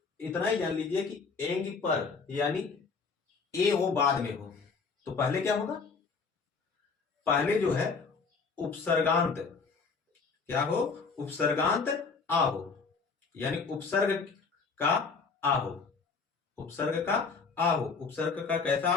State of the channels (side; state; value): right; quieter; 4.9 dB